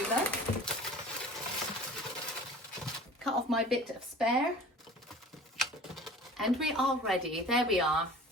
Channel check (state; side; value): normal; both; correlation 0.43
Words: Cut off my bit of spare. And we are ready. There we are.